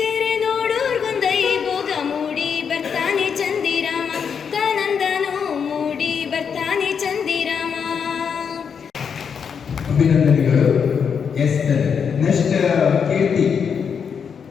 ಕೆರೆ ನೋಡೋರ್ಗೊಂದೈ ಭೋಗ ಮೂಡಿ ಬರ್ತಾನೆ ಚಂದಿರಾಮ ತಾನಂದನೋ ಮೂಡಿ ಬರ್ತಾನೆ ಚಂದಿರಾಮ ಅಭಿನಂದನೆಗಳು. ನೆಕ್ಸ್ಟ್ ಕೀರ್ತಿ.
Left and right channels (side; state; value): right; quieter; 6.8 dB